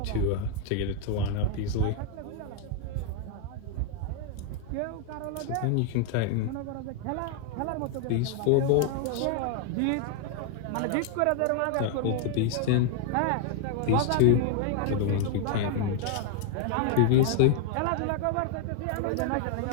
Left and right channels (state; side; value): different; both; correlation 0.00